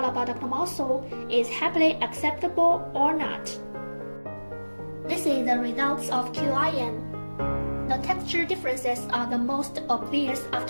adductor mussel is happily acceptable or not. This is the results of QIM. The texture differences are the most obvious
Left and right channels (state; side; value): inverted; both; correlation -1.00